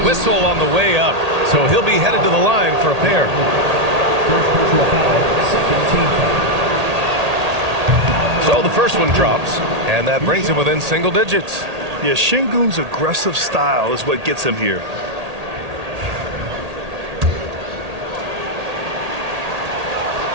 on the way up, so he'll be headed to the line for a pair. First personal foul, second team foul. So the first one drops, and that brings him within single digits. Yeah, Şengün's aggressive style is what gets him here.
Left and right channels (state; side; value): late; left; 1.8 ms